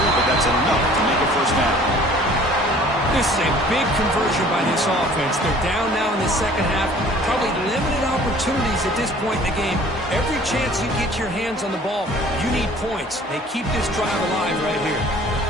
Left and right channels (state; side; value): normal; both; correlation 0.51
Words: but that's enough to make a 1st down. This is a big conversion by this offense. They're down now in the 2nd half. Probably limited opportunities at this point in the game. Every chance you get your hands on the ball, you need points. They keep this drive alive right here.